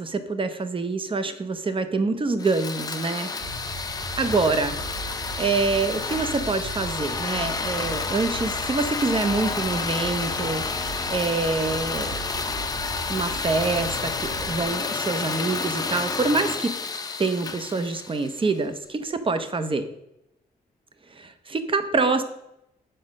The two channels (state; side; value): normal; both; correlation 0.39